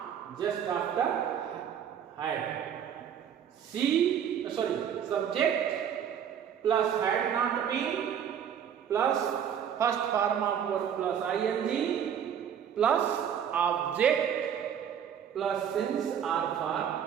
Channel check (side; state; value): left; quieter; 8.7 dB